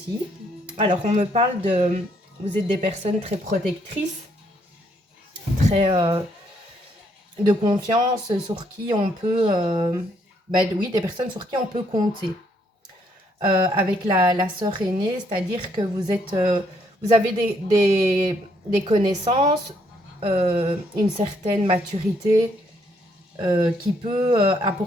Alors, on me parle de... Vous êtes des personnes très protectrices, très de confiance, sur qui on peut... oui, des personnes sur qui on peut compter. Avec la sœur aînée, c'est-à-dire que vous avez des connaissances, une certaine maturité qui peut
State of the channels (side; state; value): both; normal; correlation 0.70